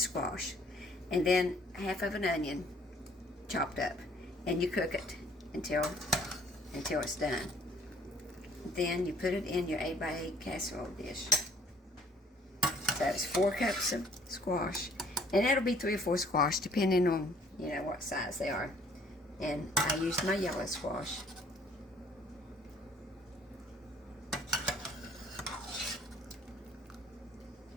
and then half of an onion chopped up, and you cook it until it's done. Then you put it in your 8x8 casserole dish. So it's 4 cups of squash. And that'll be 3 or 4 squash, depending on, what size they are. And I used my yellow squash.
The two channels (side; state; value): both; normal; correlation 0.59